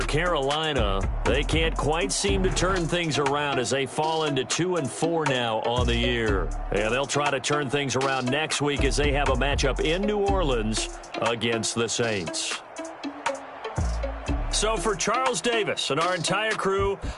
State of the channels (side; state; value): both; identical; correlation 1.00